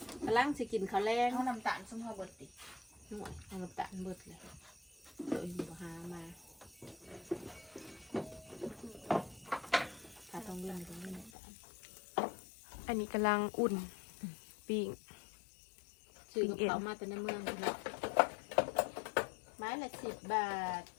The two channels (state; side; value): drops out; right; at 11.3 s